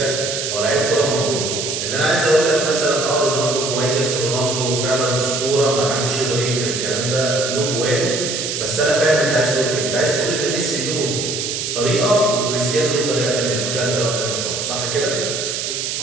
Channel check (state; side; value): noise; right; hiss, 3 dB below the sound